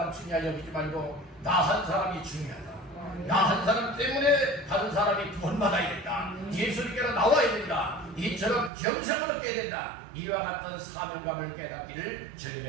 중요하게 여기지 말고 나 한 사람이 중요하다. 나 한 사람 때문에 다른 사람이 구원받아야 된다. 예수님께로 나와야 된다. 이처럼 영생을 얻게 된다. 이와 같은 사명감을 깨닫기를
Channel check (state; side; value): drops out; left; at 8.7 s